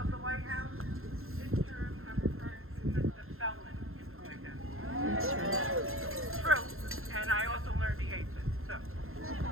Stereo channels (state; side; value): late; left; 0.61 ms